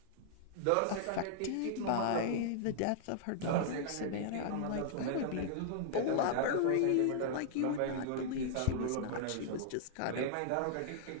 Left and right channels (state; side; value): different; both; correlation -0.01